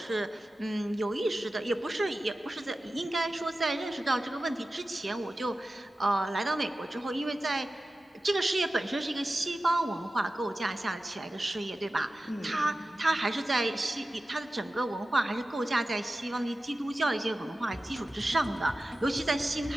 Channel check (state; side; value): normal; both; correlation 0.94